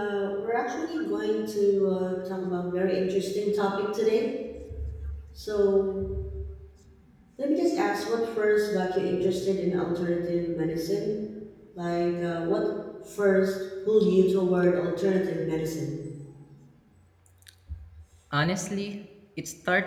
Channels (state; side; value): identical; both; correlation 1.00